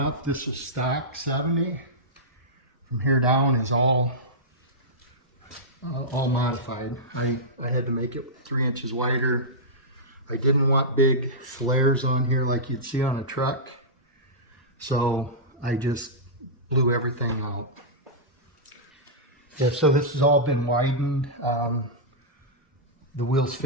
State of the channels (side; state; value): both; normal; correlation -0.13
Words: this is stock 70. From here down is all modified. I had to make it 3 inches wider. I didn't want big flares on here like you'd see on a truck, so I just blew everything out. Yeah, so this has all been widened. The wheels